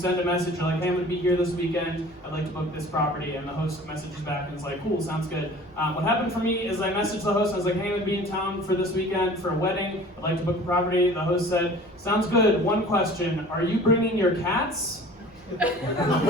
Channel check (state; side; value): normal; both; correlation 0.45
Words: a message, you're like, hey, I'm going to be here this weekend, I'd like to book this property, and the host messages back and is like, cool, sounds good. What happened for me is I messaged the host, and I was like, hey, I'm going to be in town for this weekend for a wedding, I'd like to book a property. The host said, sounds good, one question, are you bringing your cats? And